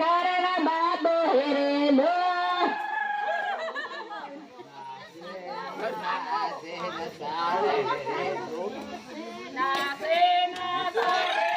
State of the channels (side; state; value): both; identical; correlation 1.00